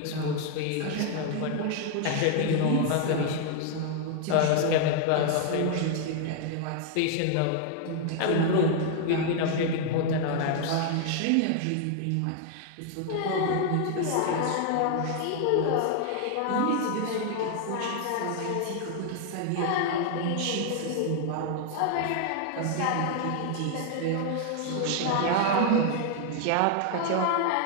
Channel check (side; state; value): both; different; correlation 0.00